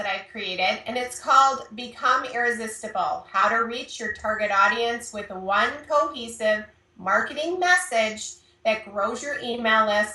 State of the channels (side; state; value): both; identical; correlation 1.00